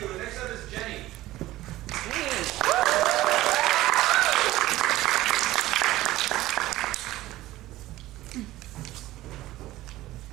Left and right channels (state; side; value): quieter; left; 16.4 dB